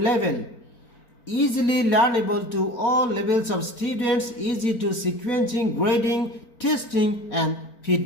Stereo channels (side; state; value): right; late; 4.4 ms